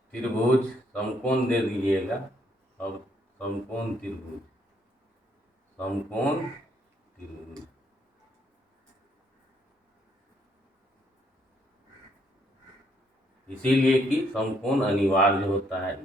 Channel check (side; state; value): both; normal; correlation 0.71